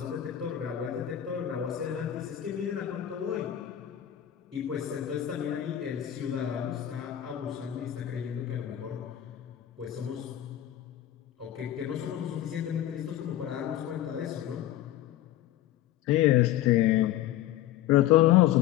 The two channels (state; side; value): quieter; right; 12.5 dB